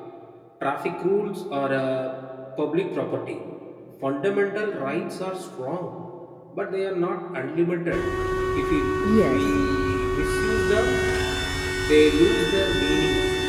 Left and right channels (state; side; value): identical; both; correlation 1.00